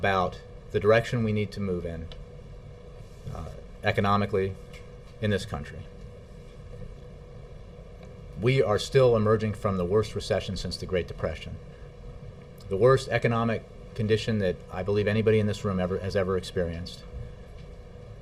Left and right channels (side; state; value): both; identical; correlation 1.00